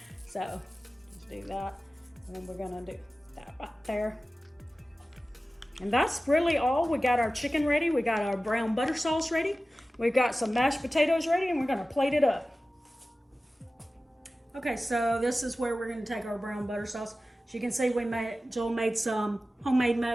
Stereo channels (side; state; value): both; normal; correlation 0.95